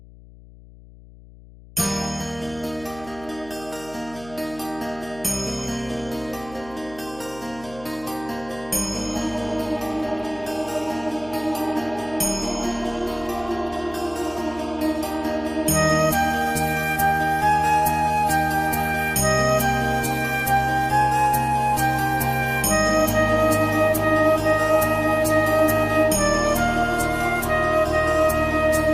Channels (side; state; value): left; noise; hum, 22 dB below the sound